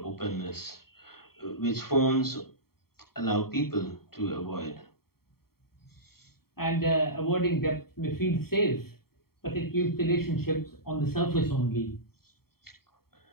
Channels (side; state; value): right; late; 0.95 ms